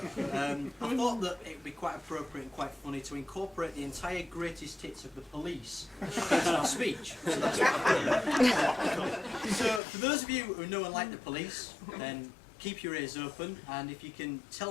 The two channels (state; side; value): drops out; right; at 9.8 s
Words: I thought that it would be quite appropriate and quite funny to incorporate the entire greatest hits of the police into our speech. So that's what I've done. So for those of you who know and like the police, then keep your ears open, and if you can